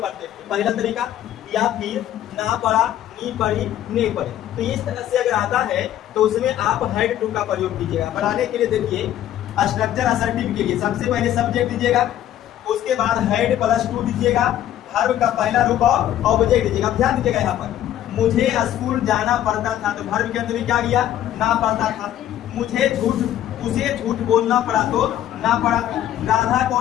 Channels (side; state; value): right; quieter; 11.9 dB